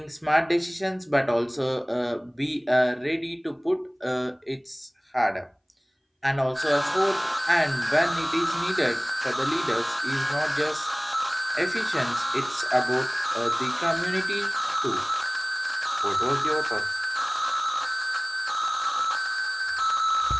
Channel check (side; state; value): both; identical; correlation 1.00